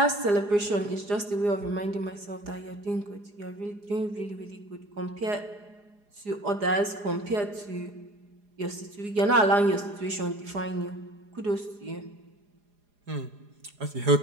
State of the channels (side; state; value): left; late; 4.9 ms